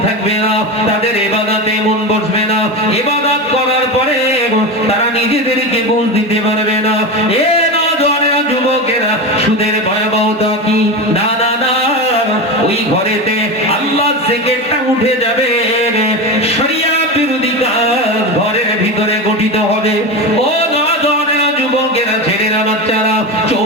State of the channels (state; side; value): normal; both; correlation 0.21